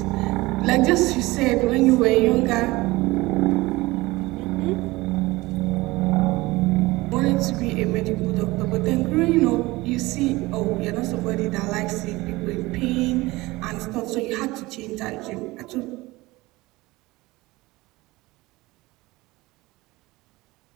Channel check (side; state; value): left; quieter; 20.7 dB